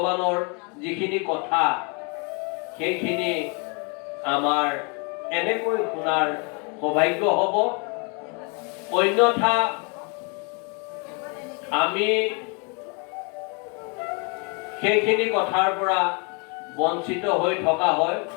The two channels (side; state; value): right; quieter; 34.1 dB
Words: যিখিনি কথা, সেইখিনি আমাৰ এনেকৈ শুনাৰ সৌভাগ্য হ'ব। অন্যথা আমি সেইখিনি কথাৰ পৰা বঞ্চিত হৈ থকা হয়,